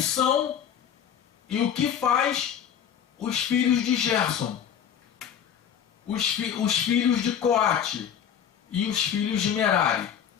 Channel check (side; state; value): right; quieter; 8.7 dB